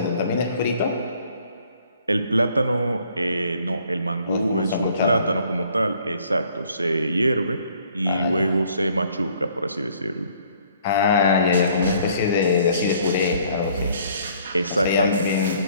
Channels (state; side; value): inverted; both; correlation -0.61